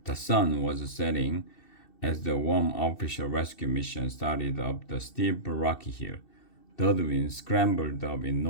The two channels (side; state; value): right; late; 2.7 ms